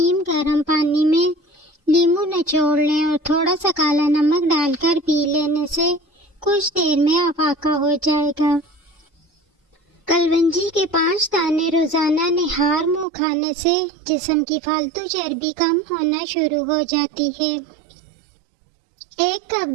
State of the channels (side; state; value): left; drops out; at 13.1 s